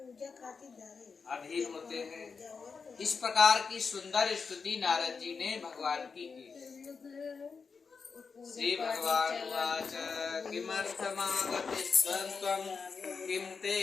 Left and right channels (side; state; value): right; quieter; 5.2 dB